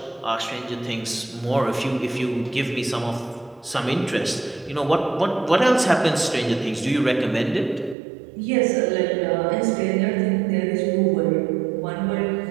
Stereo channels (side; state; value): left; drops out; at 8.0 s